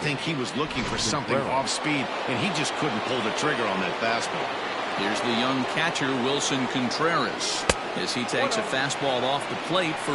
he was looking for something off speed, and he just couldn't pull the trigger on that fastball. Here's the young catcher, Wilson Contreras, as he takes a fastball off the plate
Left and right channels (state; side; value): identical; both; correlation 1.00